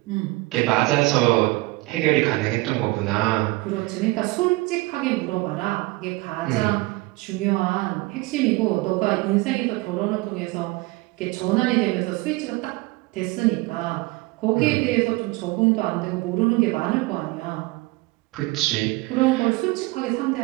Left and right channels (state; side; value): quieter; left; 22.4 dB